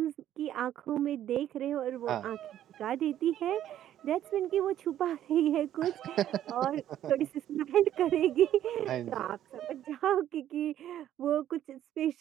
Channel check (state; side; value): quieter; left; 11.6 dB